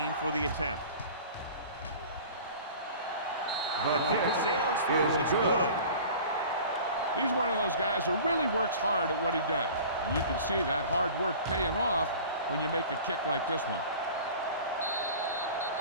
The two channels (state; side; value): inverted; both; correlation -0.42